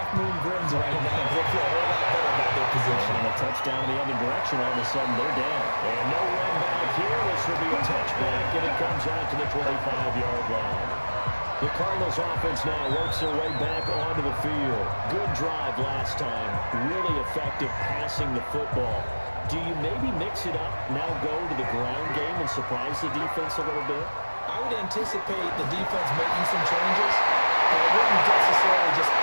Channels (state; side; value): inverted; both; correlation -1.00